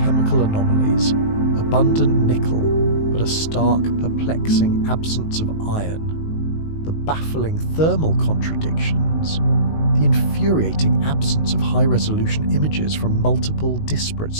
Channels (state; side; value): late; right; 19 ms